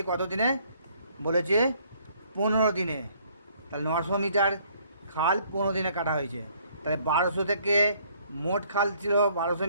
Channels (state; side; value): inverted; both; correlation -0.63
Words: কত দিনে বলেছে, 15 দিনে। তাহলে 900 মিটার খাল 15 দিনে কাটা হয়েছে। তাহলে 1200 থেকে মোট খাল ছিল 1200